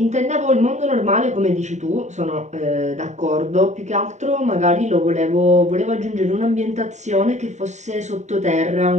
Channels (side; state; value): left; late; 0.34 ms